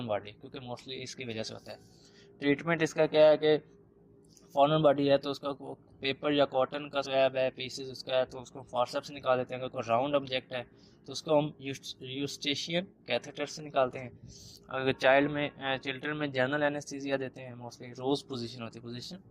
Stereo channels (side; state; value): both; identical; correlation 1.00